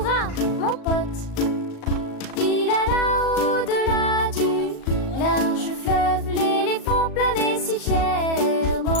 mon pote! Il alla au-delà du large fleuve, l'éléphant planait si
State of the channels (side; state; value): right; late; 37 ms